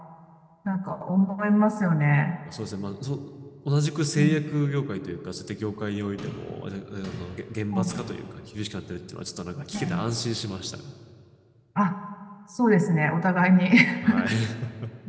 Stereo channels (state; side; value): identical; both; correlation 1.00